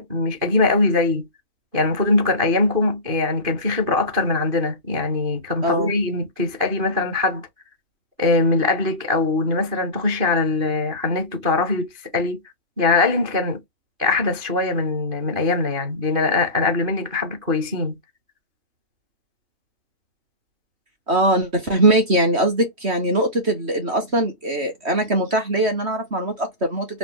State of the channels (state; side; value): late; left; 3.1 ms